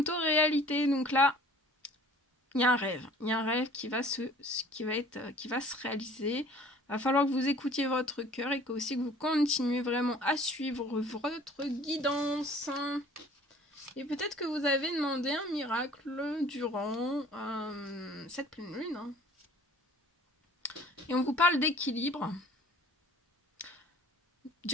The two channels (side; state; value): both; normal; correlation 0.51